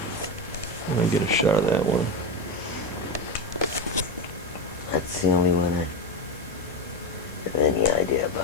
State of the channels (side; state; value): both; normal; correlation 0.15